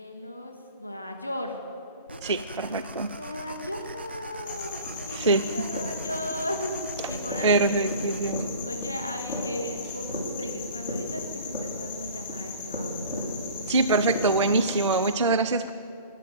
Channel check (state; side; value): inverted; both; correlation -0.43